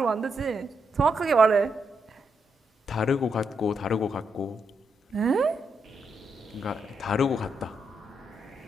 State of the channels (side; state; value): both; normal; correlation 0.81